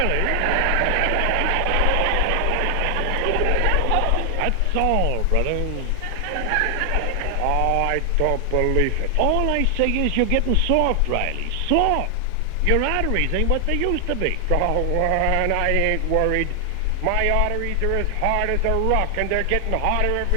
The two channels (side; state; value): both; different; correlation 0.00